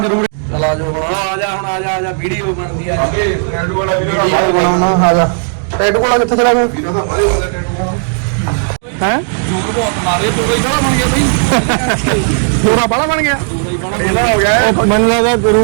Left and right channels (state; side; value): silent; left; 67 dB below the other